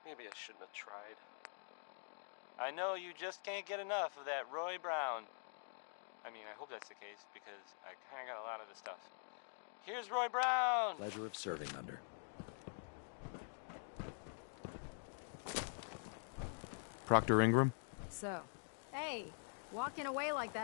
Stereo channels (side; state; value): right; silent; digital silence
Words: I shouldn't have tried. I know you just can't get enough of that Roy Brown. I mean, I hope that's the case, because I kind of got a lot of the stuff. Here's Roy Brown! Pleasure of serving under. Proctor Ingram? So, hey, walking away like